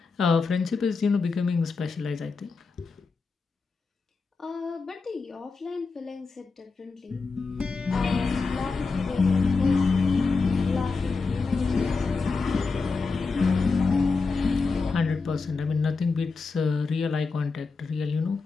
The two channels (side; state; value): right; quieter; 4.4 dB